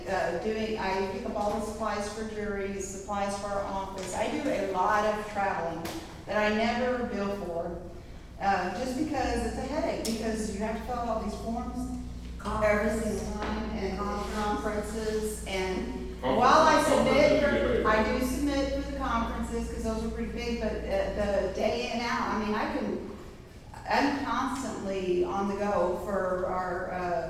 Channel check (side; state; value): both; identical; correlation 1.00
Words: I pick up all the supplies for juries, supplies for our office. I do a lot of traveling that I never bill for, just because it's a headache, because you have to fill out these forms every single time, and conferences, and while I submit, I do submit for the conferences, because those are pretty big, but the day in and out, I'm constantly on the go for our